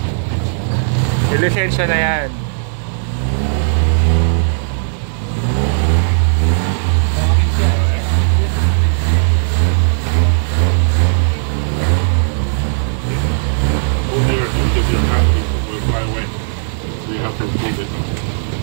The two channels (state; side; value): silent; left; digital silence